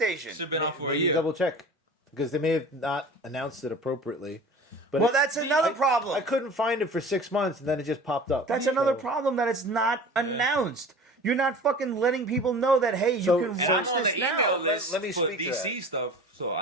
PlayStation? Should have been out for a You year. double check because they may have not announced it appropriately. But Well, that's another problem. I couldn't find it for 6 months, and then it just popped up. That's another So- problem that it's not announced. You're not fucking letting people know that, hey, you So- can And watch I'm on this the now. email list let me for speak to DC stuff, so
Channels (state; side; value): normal; both; correlation 0.39